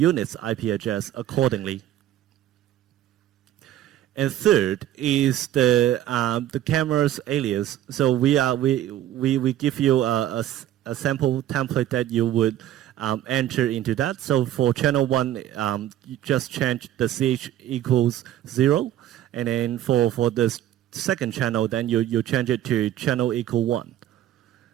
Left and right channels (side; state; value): left; quieter; 12.5 dB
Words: IP address accordingly. And third is the camera's alias. So we give you a sample template that you would enter into that. So for channel 1, you just change the CH equals 0, and then for the second channel, then you change it to channel equal 1.